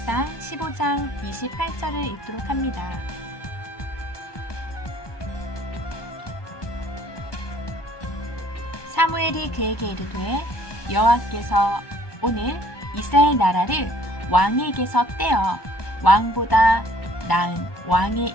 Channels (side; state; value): right; late; 1.0 ms